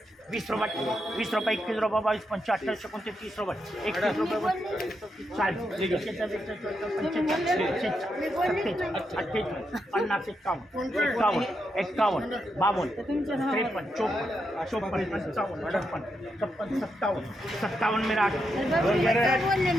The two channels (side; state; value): both; normal; correlation 0.83